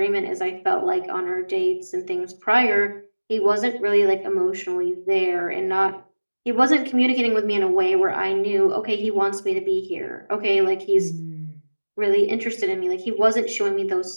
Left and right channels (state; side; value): inverted; both; correlation -1.00